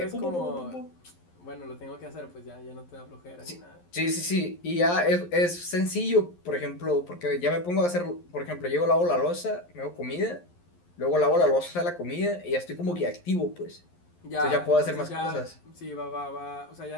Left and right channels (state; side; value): late; right; 11 ms